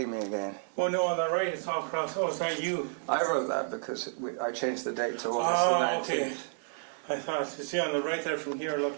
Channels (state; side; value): silent; left; 57 dB below the other